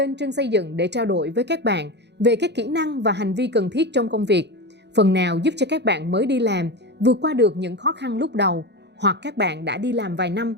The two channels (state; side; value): late; left; 0.50 ms